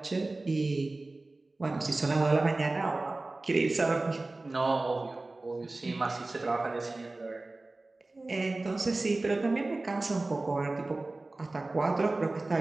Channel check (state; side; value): quieter; left; 3.1 dB